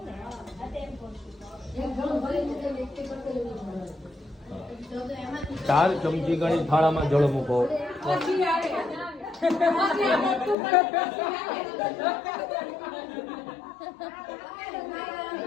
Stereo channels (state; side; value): drops out; right; at 10.6 s